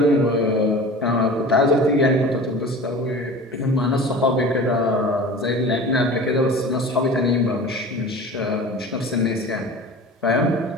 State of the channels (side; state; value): both; normal; correlation 0.38